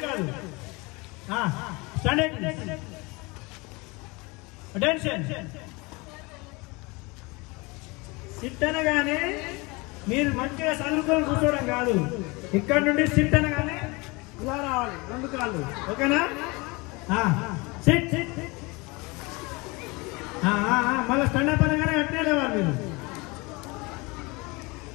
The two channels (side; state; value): right; quieter; 25.9 dB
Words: కాదు స్టాండర్డ్ అటెన్షన్ సిట్ అనగానే మీరు మంచిగా చదువుకొని కూర్చోవడం కాదు ఇక్కడ నుండి సిట్ అనగానే ఇలా రావాలి రెండు కాళ్ళు ఓకేనా సిట్ మళ్ళీ స్టాండప్ అనగానే అట్నే లేవాలి మీరు